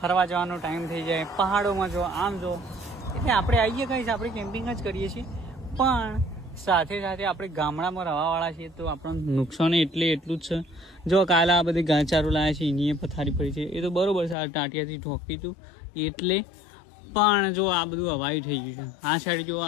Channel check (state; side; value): drops out; right; at 14.4 s